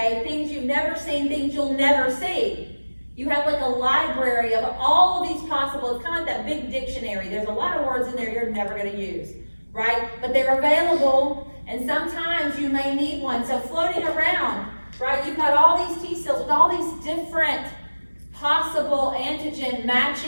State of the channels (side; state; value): both; inverted; correlation -1.00